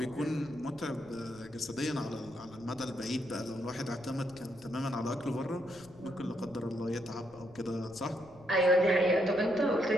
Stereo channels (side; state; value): left; noise; rumble, 22 dB below the sound